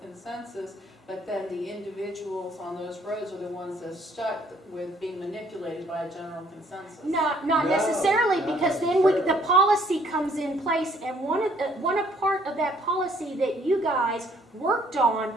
consensus, but then the individuals on those roads are the ones that are stuck with being manipulated by a general consensus. Not No, necessarily, not because then necessarily. the policy comes in place, and one part of that policy that you guys worked on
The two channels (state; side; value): normal; both; correlation 0.63